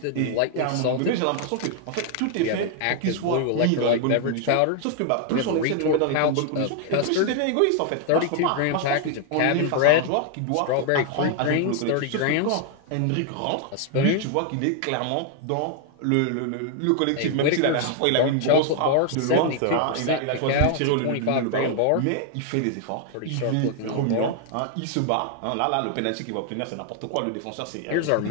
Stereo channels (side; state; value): both; different; correlation 0.00